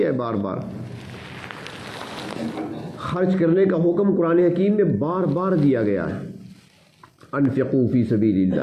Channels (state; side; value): identical; both; correlation 1.00